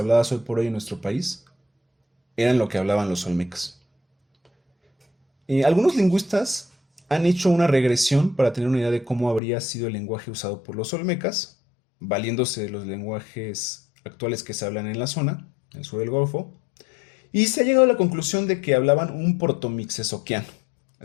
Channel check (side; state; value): right; drops out; at 9.4 s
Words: hoy por hoy en nuestro país eran lo que hablaban los olmecas. Algunos lingüistas han hecho una regresión para tener una idea de cómo habría sido el lenguaje usado por los olmecas, valiéndose de los lenguajes actuales que se hablan en la zona, en el sur del Golfo, y se ha llegado a la conclusión de que hablaban un protomixezoquiano,